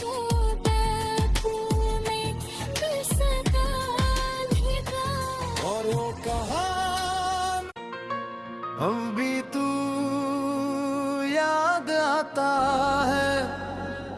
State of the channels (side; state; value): both; identical; correlation 1.00